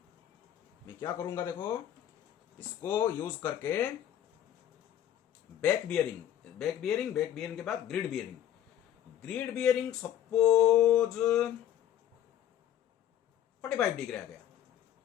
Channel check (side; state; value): right; quieter; 11.0 dB